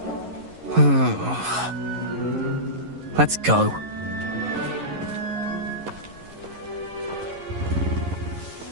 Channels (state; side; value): late; left; 11 ms